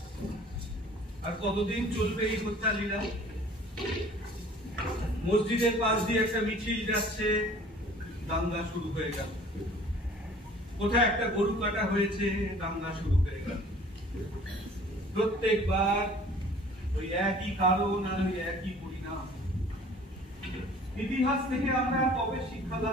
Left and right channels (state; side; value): normal; both; correlation 0.50